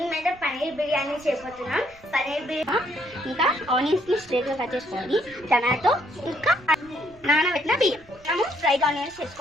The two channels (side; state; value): right; noise; rumble, 26 dB below the sound